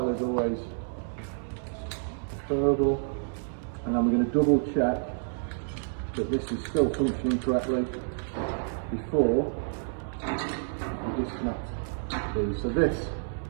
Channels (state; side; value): silent; left; 58 dB below the other